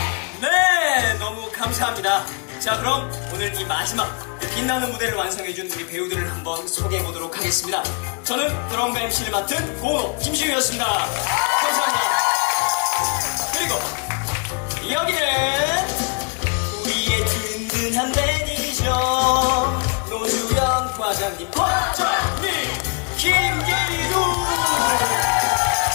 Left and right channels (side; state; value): right; quieter; 34.8 dB